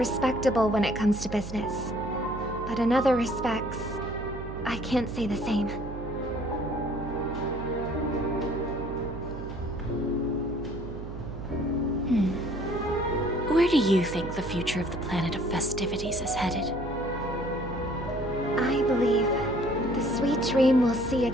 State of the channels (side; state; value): right; noise; hum, 9 dB below the sound